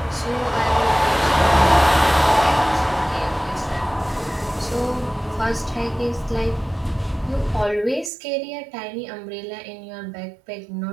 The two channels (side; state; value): left; drops out; at 8.1 s